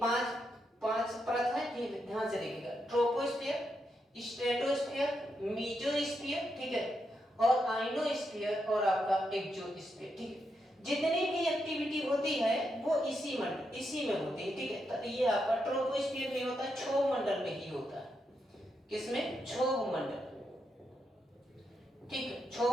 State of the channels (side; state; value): both; normal; correlation 0.83